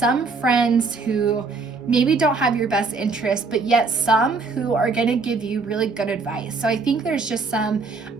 friends who maybe don't have your best interest, but yet some who are going to give you really good advice. So I think there's just some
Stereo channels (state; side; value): quieter; left; 4.2 dB